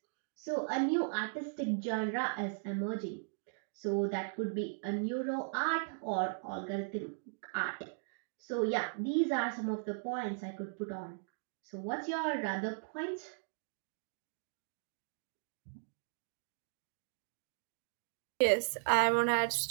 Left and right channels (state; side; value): silent; left; digital silence